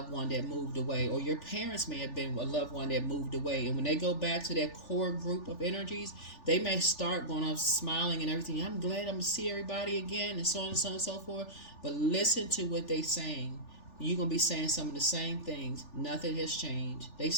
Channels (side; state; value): right; late; 3.4 ms